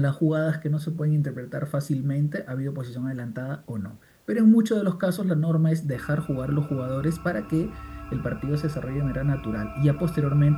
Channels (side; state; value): both; identical; correlation 1.00